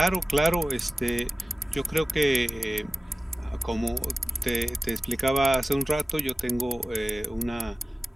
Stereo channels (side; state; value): both; normal; correlation 0.96